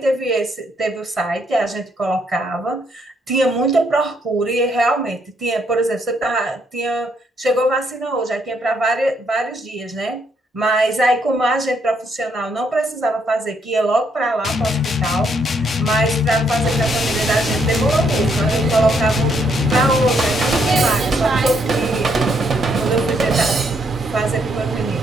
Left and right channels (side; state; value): both; normal; correlation 0.73